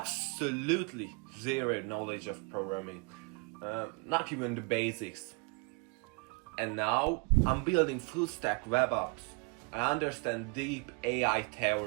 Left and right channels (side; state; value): left; quieter; 32.0 dB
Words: zero knowledge of programming, not even the basics. And now I'm building full stack web apps. I understand deep AI